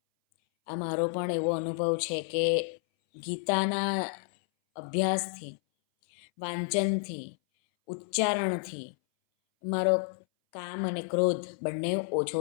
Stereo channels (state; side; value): silent; right; 58 dB below the other